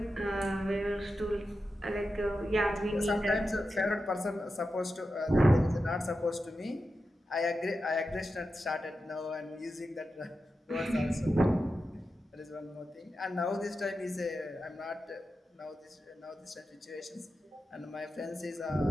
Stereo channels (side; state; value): both; normal; correlation 0.90